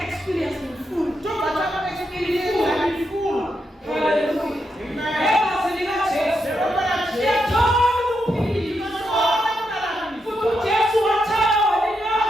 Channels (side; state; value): both; normal; correlation 0.83